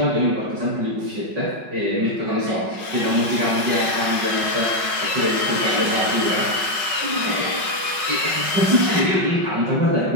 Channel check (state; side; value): late; left; 5.4 ms